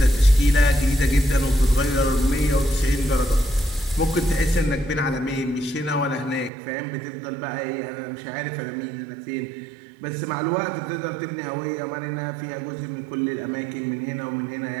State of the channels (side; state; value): left; drops out; at 6.5 s